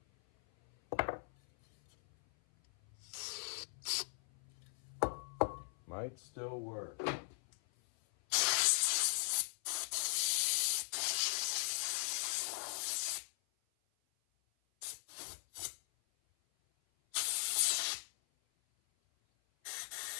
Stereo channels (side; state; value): right; silent; 52 dB below the other